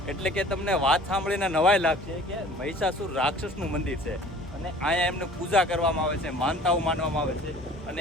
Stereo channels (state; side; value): normal; both; correlation 0.48